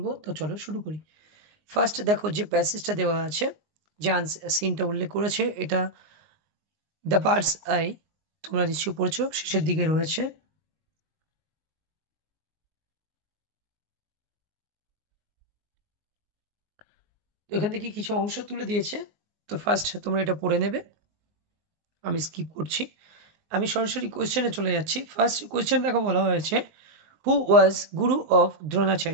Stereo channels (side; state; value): left; late; 19 ms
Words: তো চলো শুরু করি। ফার্স্ট দেখো যে প্যাসেজটা দেওয়া আছে, যে সিনটা উল্লেখ করেছে, এটা দ্য বার্ডস আই, তোমরা নিশ্চয়ই পড়ছো, শেষের দিকে রয়েছে। এখান থেকে কিছু অংশ তুলে দিয়েছে, তো ফার্স্ট তোমরা এটা পড়ে নেবে, আমি স্কিপ করছি। আমি সরাসরি কোয়েশ্চেনে চলে যাচ্ছি। ফার্স্ট কোয়েশ্চেন দেখো, বলা হয়েছে হু ওয়াজ গুরু of